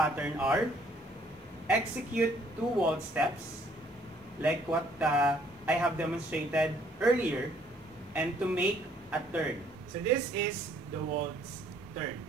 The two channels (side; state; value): both; normal; correlation 0.63